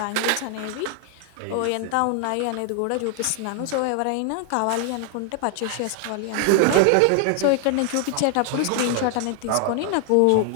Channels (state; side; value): different; both; correlation 0.00